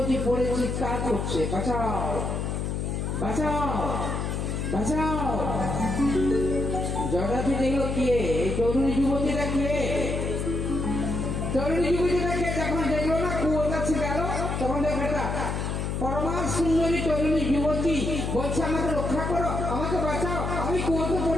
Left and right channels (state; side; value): noise; left; hum, 2 dB below the sound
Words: পড়ে চিৎকার করছে, বাঁচাও বাঁচাও বাঁচাও। যজাতি দেখলো কে, এই তরুণী যুবতীটা কে? তরুণী যুবতীটা কে? যখন দেখলো না কুয়োর কাছে গেল, তখন দেখো একটা পরমা সুন্দরী তরুণী যুবতী বলছে, আমাকে রক্ষা করো, আমাকে বাঁচাও, আমি কুয়োতে